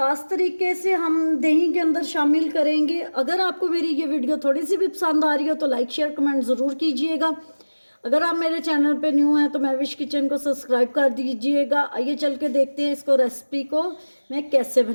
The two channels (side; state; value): both; inverted; correlation -1.00